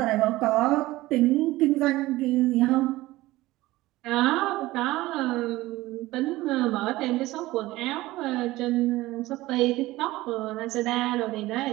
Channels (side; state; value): left; quieter; 18.1 dB